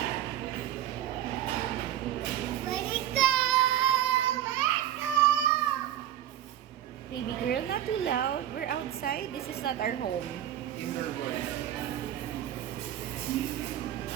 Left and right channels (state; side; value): quieter; left; 11.9 dB